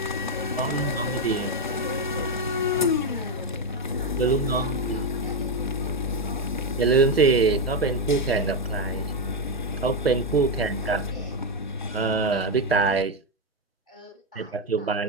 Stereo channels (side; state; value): both; normal; correlation 0.06